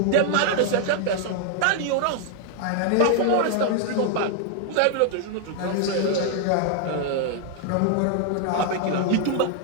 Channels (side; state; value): both; different; correlation 0.00